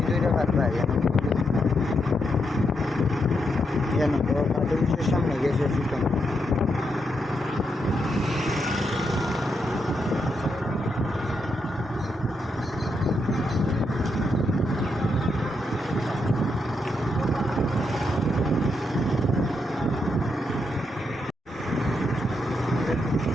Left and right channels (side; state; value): both; normal; correlation 0.81